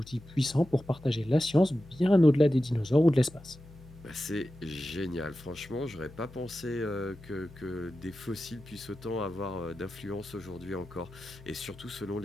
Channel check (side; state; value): left; noise; hum, 19 dB below the sound